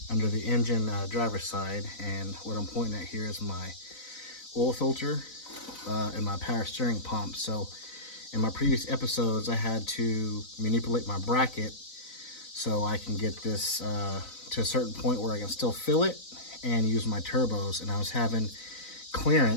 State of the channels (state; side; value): late; right; 4.0 ms